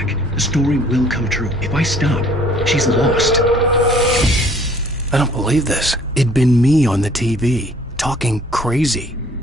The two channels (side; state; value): both; normal; correlation 0.56